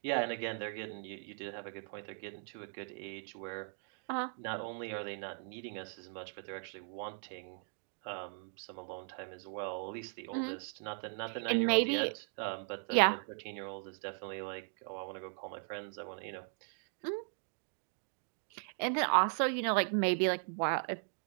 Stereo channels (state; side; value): silent; left; 52 dB below the other